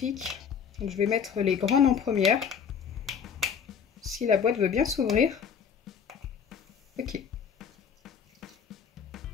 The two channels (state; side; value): quieter; right; 7.1 dB